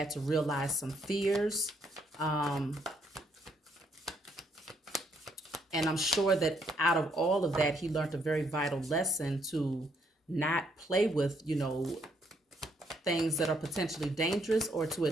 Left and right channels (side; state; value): both; normal; correlation 0.71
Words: to realize some fears. And I'm sure that out of all of that, he learned a very vital lesson to not play with, things that are potentially dangerous, or to